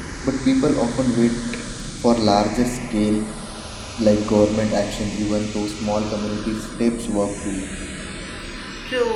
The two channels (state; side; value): identical; both; correlation 1.00